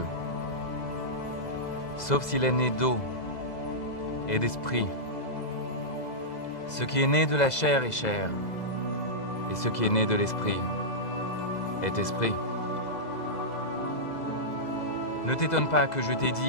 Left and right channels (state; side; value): late; right; 2.0 ms